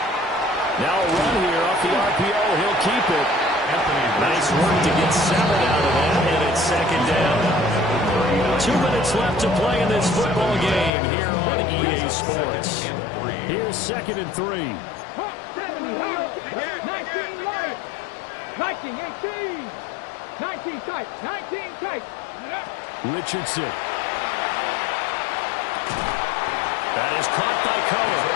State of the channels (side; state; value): right; drops out; at 10.9 s